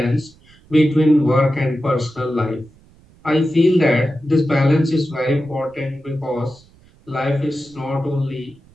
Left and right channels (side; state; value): right; noise; rumble, 28 dB below the sound